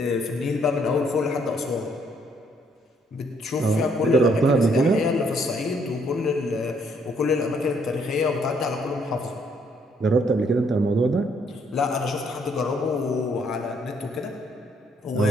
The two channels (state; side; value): normal; both; correlation 0.68